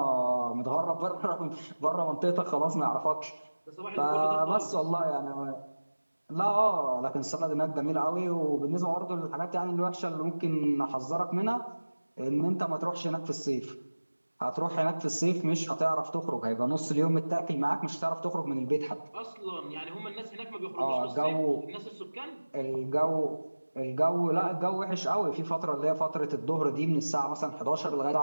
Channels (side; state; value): both; inverted; correlation -1.00